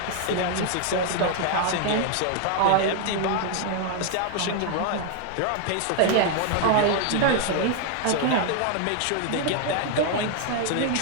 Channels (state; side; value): different; both; correlation 0.00